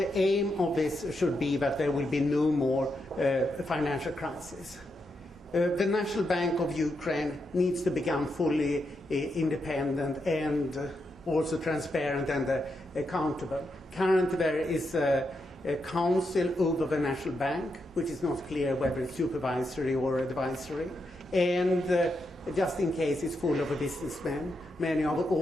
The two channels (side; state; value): both; normal; correlation 0.83